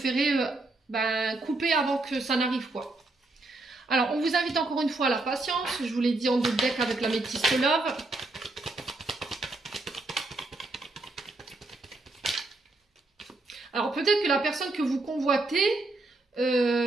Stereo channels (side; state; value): left; quieter; 3.1 dB